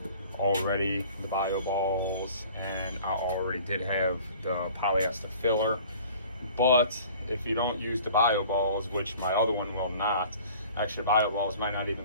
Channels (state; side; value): inverted; both; correlation -0.48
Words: already the bio balls, and I already did have the polyester filler. But if you don't use the bio balls, which my other one will not, actually bio balls might not